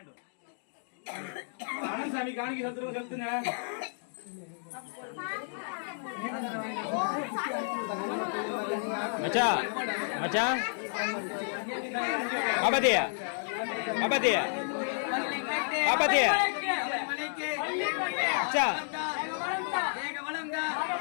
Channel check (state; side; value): silent; right; digital silence